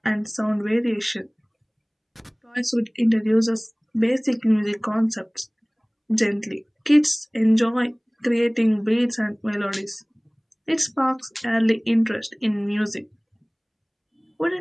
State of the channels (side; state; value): both; identical; correlation 1.00